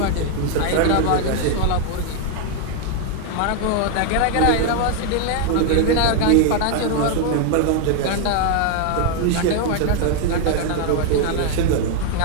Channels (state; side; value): different; both; correlation 0.00